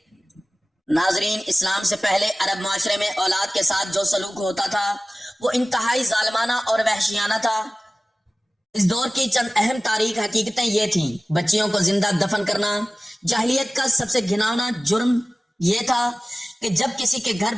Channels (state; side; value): normal; both; correlation 0.97